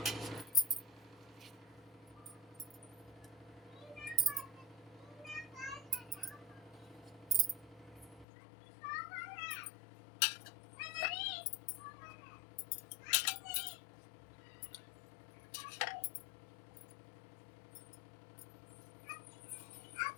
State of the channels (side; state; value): right; drops out; at 8.2 s